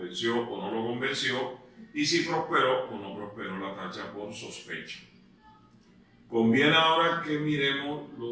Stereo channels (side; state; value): both; identical; correlation 1.00